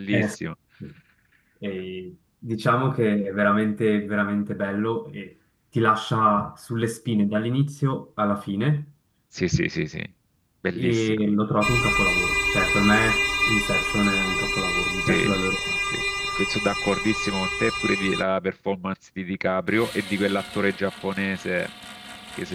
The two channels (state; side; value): identical; both; correlation 1.00